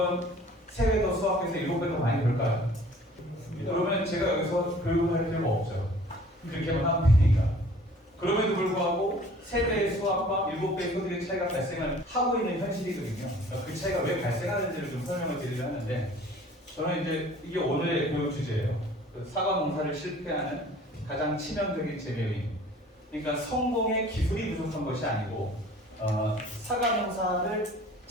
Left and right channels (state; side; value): normal; both; correlation 0.50